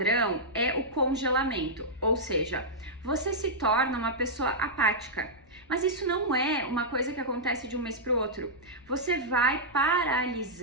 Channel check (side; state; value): left; noise; rumble, 28 dB below the sound